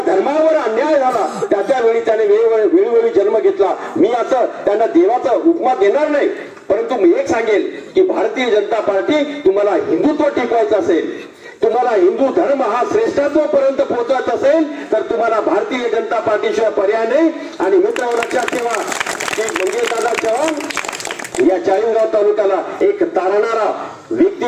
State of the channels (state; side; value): identical; both; correlation 1.00